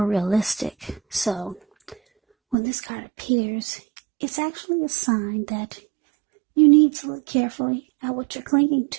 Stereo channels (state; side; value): drops out; left; at 2.6 s